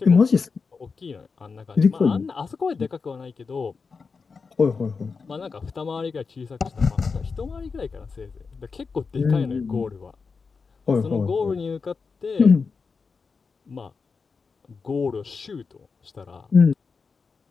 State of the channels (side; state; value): right; quieter; 4.9 dB